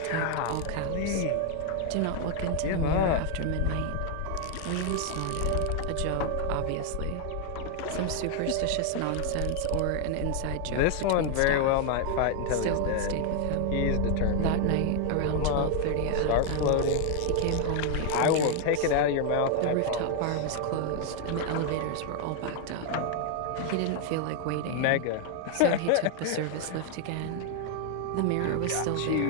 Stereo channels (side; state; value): both; different; correlation 0.00